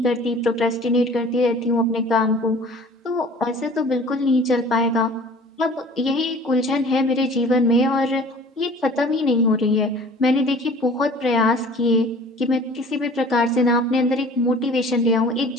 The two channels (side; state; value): both; normal; correlation 0.47